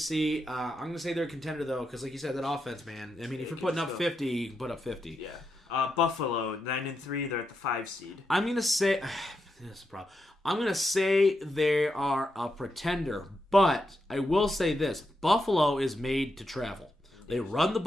I'm going to say they're a contender, though, because like you said, that offense, man. I mean, if you're putting up 50, you can put up 50. Yeah. Buffalo, 9-3, they're at the 5 seed. I'm going to say... This is a problem. I'm going to say they are a pretender, but I will say this. Buffalo is made to travel. They run the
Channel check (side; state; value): both; normal; correlation 0.85